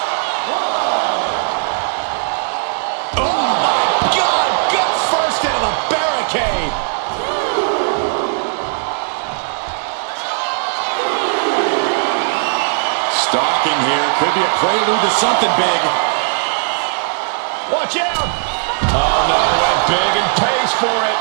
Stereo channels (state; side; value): silent; left; 68 dB below the other